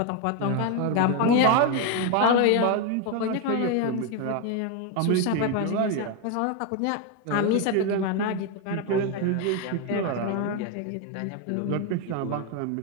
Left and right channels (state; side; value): different; both; correlation 0.02